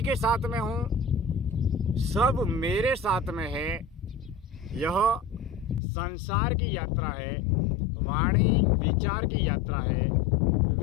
के साथ में हूँ, सब मेरे साथ में है। यह संसार की यात्रा है, वाणी विचार की यात्रा है,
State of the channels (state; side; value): drops out; right; at 5.8 s